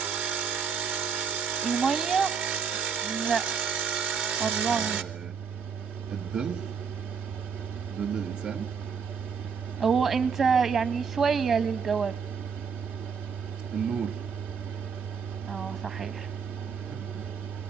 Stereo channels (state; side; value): quieter; left; 6.2 dB